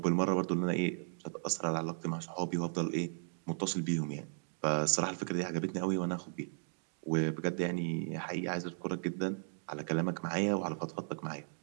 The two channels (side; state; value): left; silent; digital silence